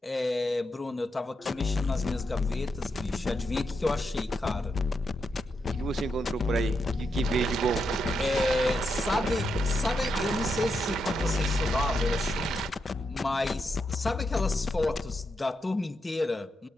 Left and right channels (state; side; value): normal; both; correlation 0.84